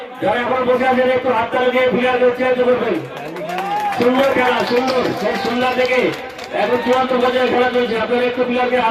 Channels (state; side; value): identical; both; correlation 1.00